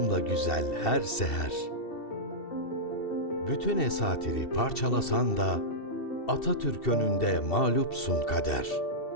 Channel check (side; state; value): right; late; 2.7 ms